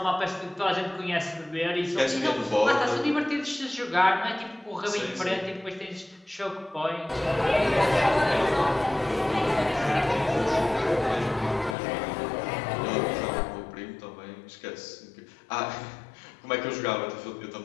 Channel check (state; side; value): drops out; right; at 11.8 s